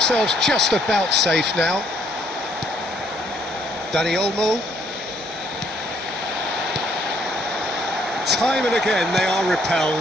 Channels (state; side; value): normal; both; correlation 0.67